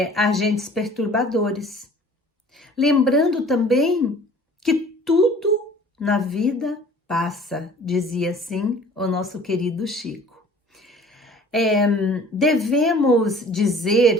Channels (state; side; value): normal; both; correlation 0.49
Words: agentes perturbadores. Lembrando também que tudo na vida passa, dizia assim o nosso querido Chico. Devemos